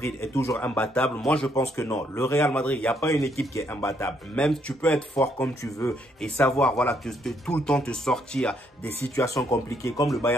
est toujours imbattable, moi je pense que non. Le Real Madrid, il n'y a pas une équipe qui est imbattable. Même tu peux être fort comme tu veux et savoir, voilà, tout le temps te sortir des situations compliquées comme le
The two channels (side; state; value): both; normal; correlation 0.72